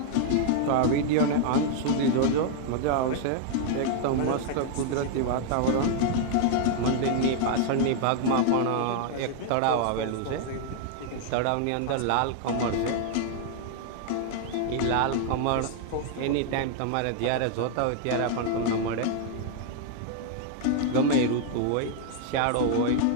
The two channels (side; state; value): both; different; correlation 0.00